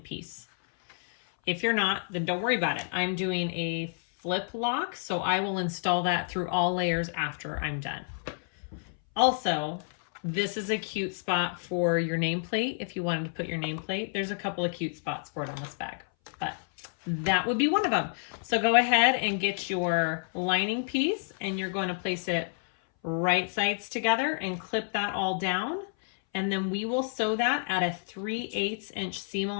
If you're not, then don't worry about it. I'm doing a flip lock, so I will install that through all layers after I'm done. Also, this is a cute spot for your nameplate. If you wanted to put your nameplate, there's a couple of cute spots for it on this bag, but that would be one of them. So go ahead and get your lining piece, and you're going to place it right sides together and clip that all down. And then we will sew that at a 3/8 inch seam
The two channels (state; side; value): silent; right; 58 dB below the other